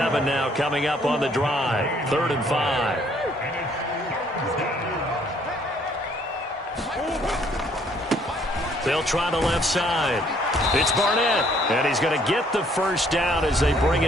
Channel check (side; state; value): both; normal; correlation 0.64